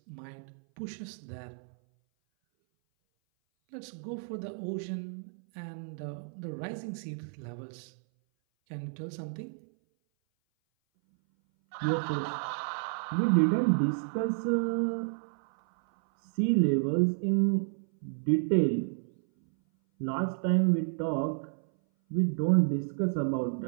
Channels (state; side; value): silent; left; 57 dB below the other